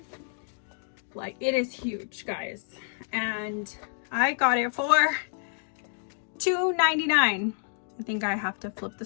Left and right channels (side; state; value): right; silent; digital silence